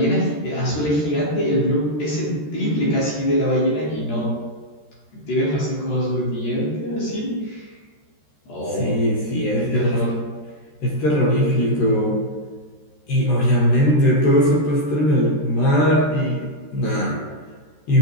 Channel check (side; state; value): right; late; 13 ms